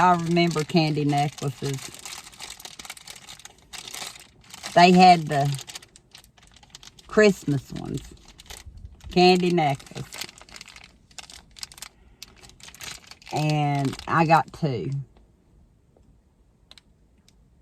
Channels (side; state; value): both; identical; correlation 1.00